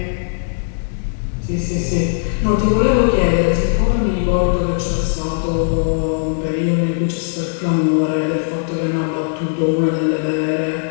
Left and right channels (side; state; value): right; silent; digital silence